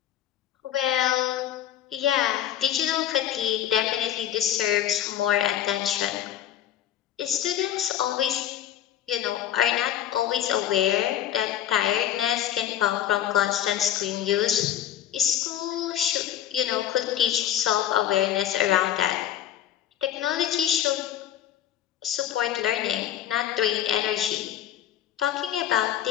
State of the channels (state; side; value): quieter; right; 11.2 dB